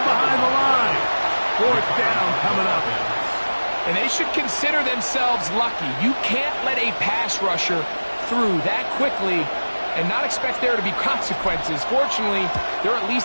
behind the line. 4th down coming up. And they should consider themselves lucky. You can't let a pass rusher through that quickly and not expect there to be consequences. Fortunately, they're at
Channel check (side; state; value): both; inverted; correlation -1.00